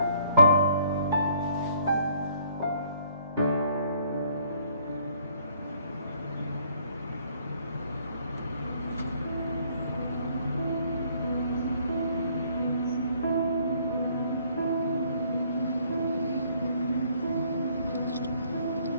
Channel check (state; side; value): inverted; both; correlation -0.63